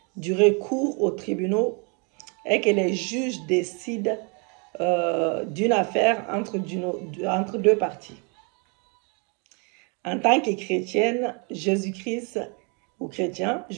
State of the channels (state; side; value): quieter; left; 34.7 dB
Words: du recours aux tribunaux est que les juges décident d'une affaire entre deux parties. En tant que chrétienne, Jésus-Christ